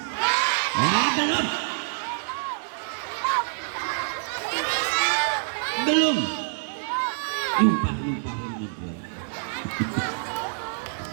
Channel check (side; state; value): left; silent; digital silence